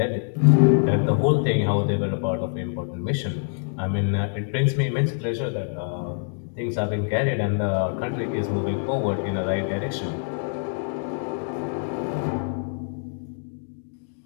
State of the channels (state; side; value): silent; right; digital silence